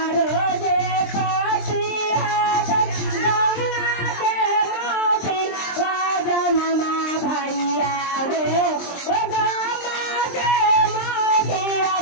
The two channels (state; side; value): late; right; 23 ms